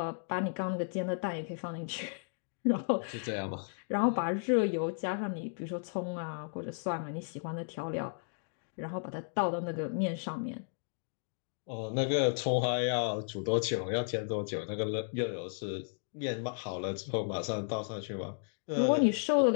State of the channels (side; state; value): right; silent; digital silence